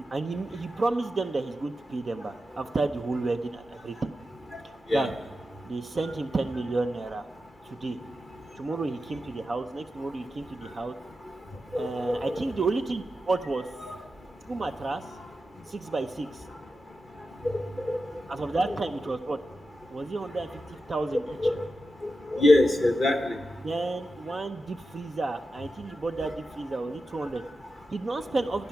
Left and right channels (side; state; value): both; normal; correlation 0.90